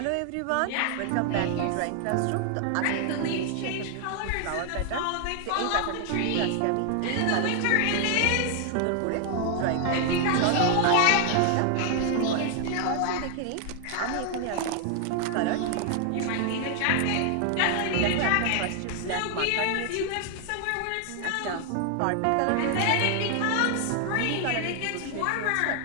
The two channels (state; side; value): different; both; correlation 0.00